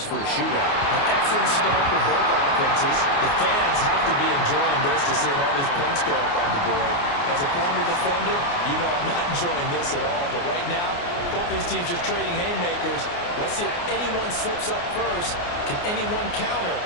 for a shootout. An excellent start for both offenses. The fans have to be enjoying this to see all these points go up on the board. As a former defender, you know I'm not enjoying this at all. But right now, both these teams just trading haymakers. Let's see if anyone slips up first. Can anyone counter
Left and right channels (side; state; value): right; late; 29 ms